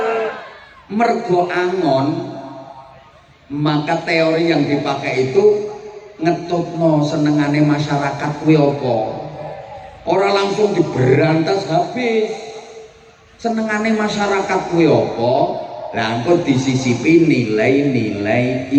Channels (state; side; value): identical; both; correlation 1.00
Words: Mergo angon, maka teori yang dipakai itu ngetutno senengane masyarakat kuwi apa? Ora langsung diberantas habis. Senengane masyarakat kuwi apa? Lah engko disisipi nilai-nilai